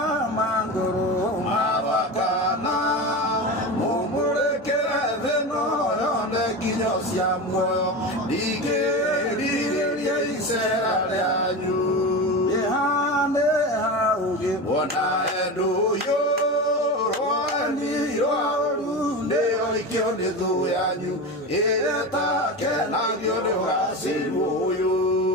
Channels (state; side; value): normal; both; correlation 0.24